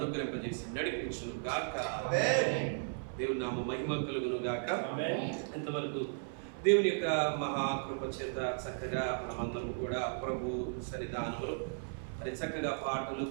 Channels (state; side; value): silent; left; 54 dB below the other